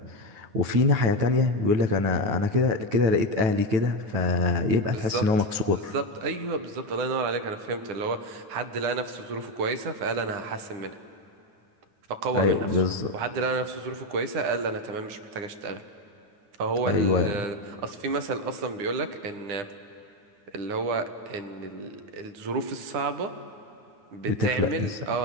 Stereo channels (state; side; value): late; left; 9.5 ms